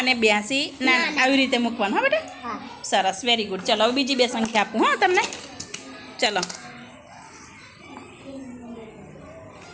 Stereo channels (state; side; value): identical; both; correlation 1.00